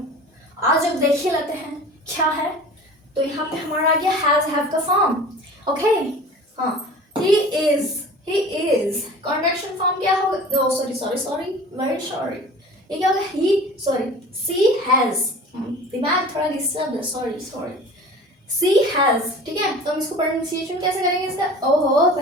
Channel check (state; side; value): normal; both; correlation 0.40